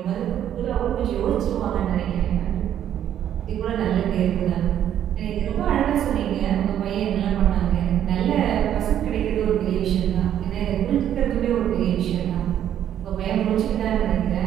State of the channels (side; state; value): left; quieter; 10.4 dB